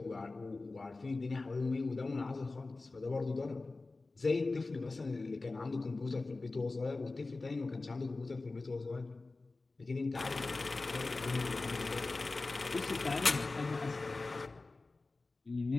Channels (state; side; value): quieter; right; 3.5 dB